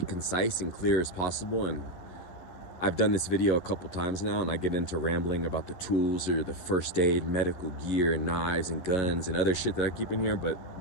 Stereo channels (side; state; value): right; late; 11 ms